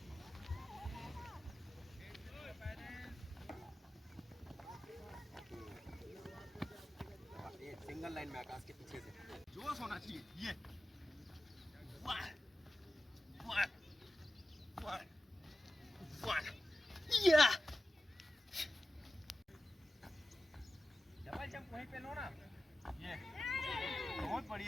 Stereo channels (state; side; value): normal; both; correlation 0.94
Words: सिंगल लाइन में आकाश के पीछे से जोश होना चाहिए ये वाह वाह वाह वाह या डबल जंप वहीं पे लो ना। ये बहुत